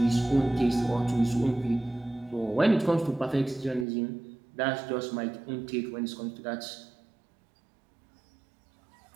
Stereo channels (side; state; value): left; drops out; at 3.9 s